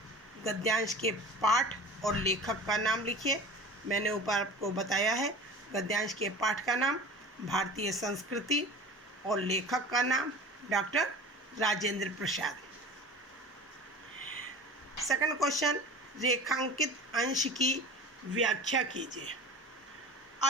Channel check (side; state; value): both; normal; correlation 0.37